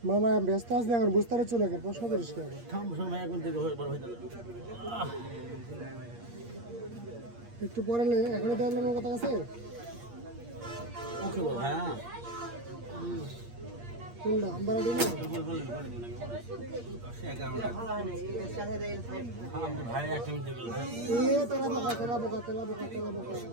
মামা ব্যস্ত আছে এখন, বুঝতে পারছো না, প্রশ্ন করিস কে? একটু পরে এখনই দেখলাম আমার কথা আছে। ওকে বল হ্যাঁ কোনটা আমবারাটি না? ভাই একটা মিনিট গেল এ তেলা বোকা তেলা বোকা তেলা বোকা তেলা বোকা।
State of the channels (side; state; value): left; late; 8.5 ms